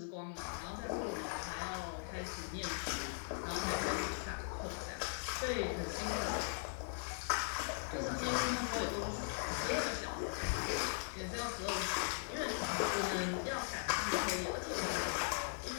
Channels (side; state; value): right; silent; digital silence